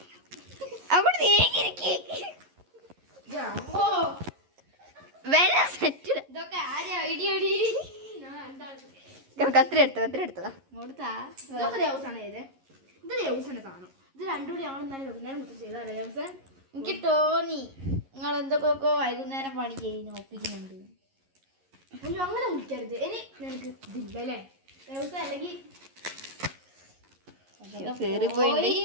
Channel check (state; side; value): late; left; 11 ms